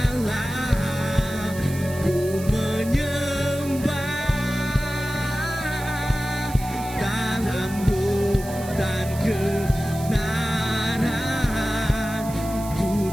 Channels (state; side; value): noise; right; hiss, 15 dB below the sound